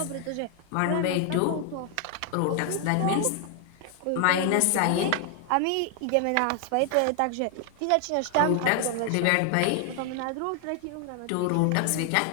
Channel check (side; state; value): both; different; correlation 0.00